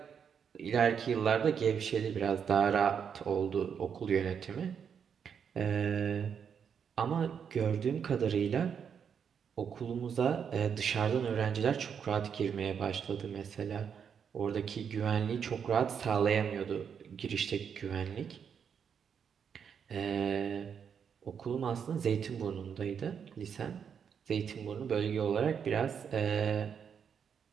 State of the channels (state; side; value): quieter; left; 7.3 dB